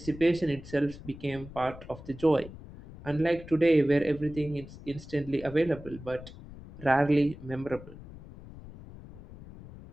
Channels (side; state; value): left; noise; rumble, 16 dB below the sound